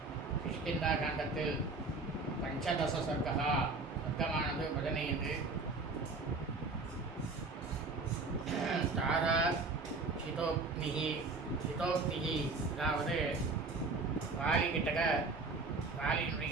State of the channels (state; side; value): quieter; left; 3.8 dB